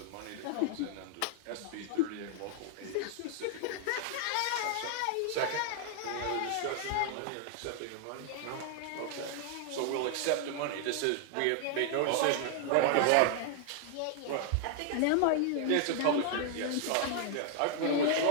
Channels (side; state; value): both; different; correlation -0.01